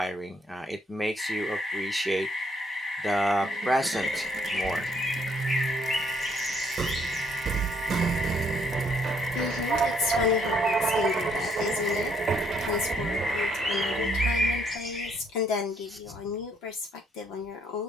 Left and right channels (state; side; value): normal; both; correlation 0.68